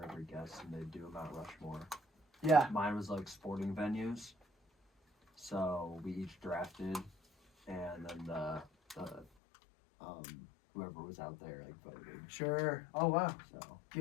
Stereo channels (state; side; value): drops out; right; at 9.2 s